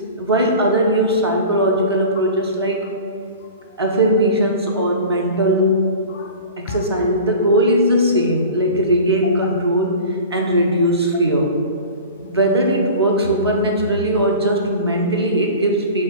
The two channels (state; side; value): inverted; both; correlation -0.37